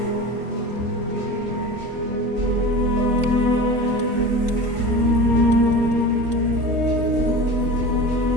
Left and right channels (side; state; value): left; late; 3.4 ms